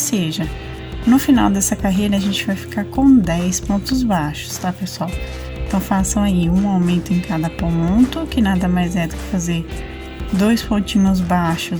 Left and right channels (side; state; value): both; identical; correlation 1.00